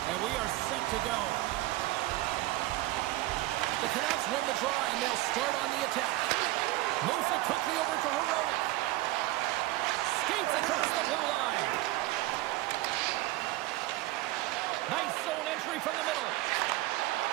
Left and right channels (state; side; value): quieter; left; 17.7 dB